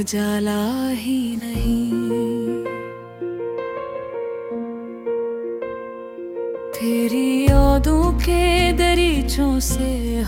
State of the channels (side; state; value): both; identical; correlation 1.00